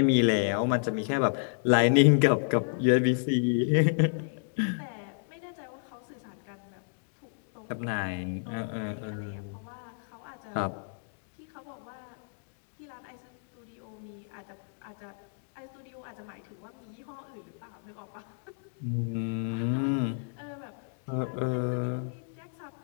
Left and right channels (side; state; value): right; silent; digital silence